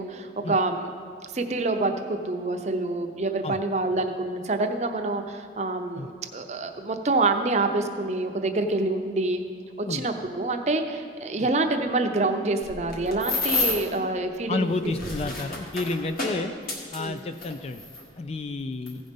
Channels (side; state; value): both; normal; correlation 0.23